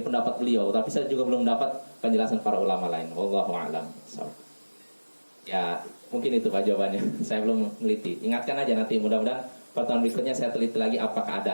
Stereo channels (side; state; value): both; inverted; correlation -1.00